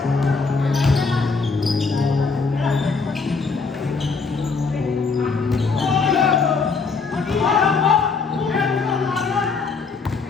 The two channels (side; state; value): right; quieter; 4.6 dB